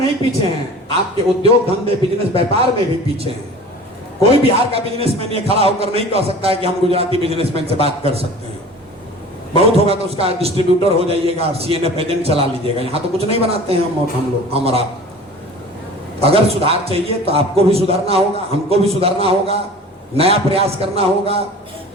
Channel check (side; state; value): both; normal; correlation 0.41